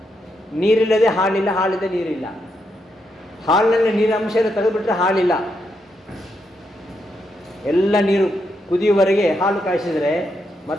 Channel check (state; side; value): normal; both; correlation 0.81